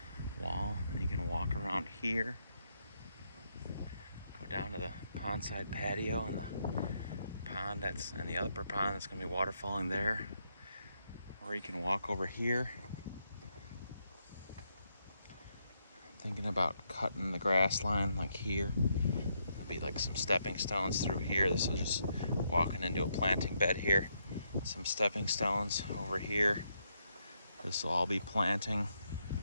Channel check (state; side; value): inverted; both; correlation -0.78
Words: wall. And you can walk around here, go down to the pondside patio and the pond and the upper pond that's going to be waterfalling there. Or you can walk over here. I'm thinking about cutting the grass line like here. There'll be like some stepping stones through here. This will just walking into a planting bed here. Some stepping stones over here. This will all be planting.